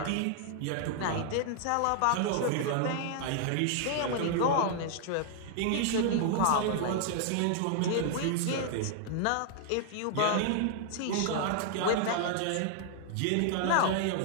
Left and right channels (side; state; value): both; different; correlation 0.00